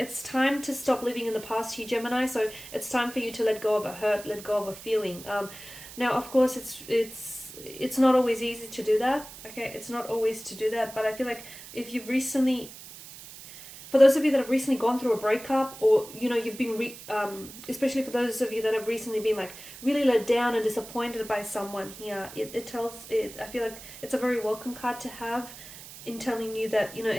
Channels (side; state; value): right; noise; hiss, 15 dB below the sound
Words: time to stop living in the past here, Gemini. So it's time for you to let go of a hurt, let go of a feeling. Now, of course, it's not always easy to do that. Okay, it's not always to do that. But I feel like if you've recently, for those of you that have recently gone through a breakup, or, you know, you've been, especially for those of you that have recently been like really let down and disappointed by someone here, I feel like it's a very welcome card to have, in telling you that, you know,